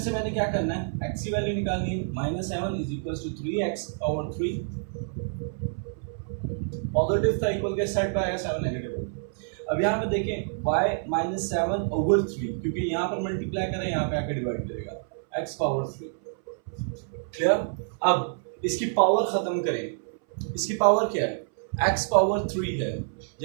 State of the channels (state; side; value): silent; left; 60 dB below the other